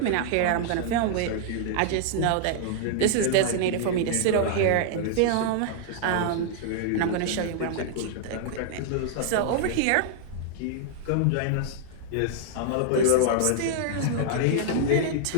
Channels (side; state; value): both; different; correlation -0.01